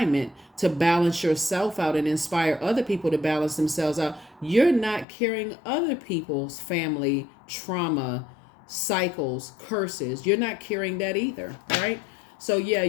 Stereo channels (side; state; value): right; drops out; at 5.1 s